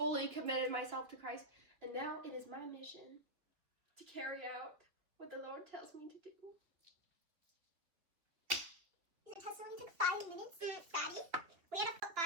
committed myself to Christ, and now it is my mission to carry out what the Lord tells me to do. Your testimony took 5 minutes, Daddy. We had to put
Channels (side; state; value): left; late; 3.0 ms